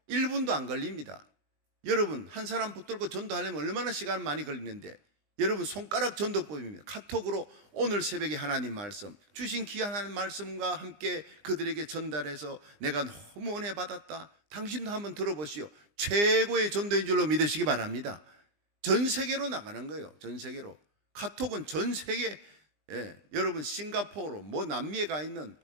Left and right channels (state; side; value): late; left; 20 ms